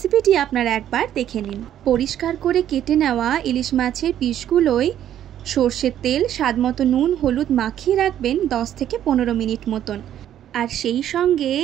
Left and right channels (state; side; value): quieter; left; 11.0 dB